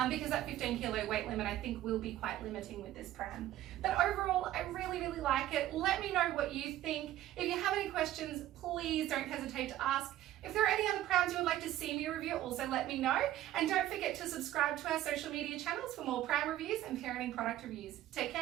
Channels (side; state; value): left; quieter; 13.8 dB